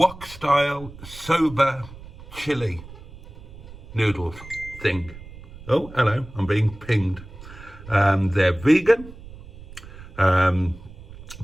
Soba Chili Noodles thing. Oh, hello, I'm being pinged. They're vegan.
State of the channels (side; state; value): right; noise; rumble, 17 dB below the sound